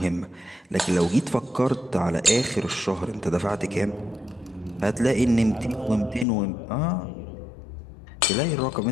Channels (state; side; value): drops out; right; at 6.2 s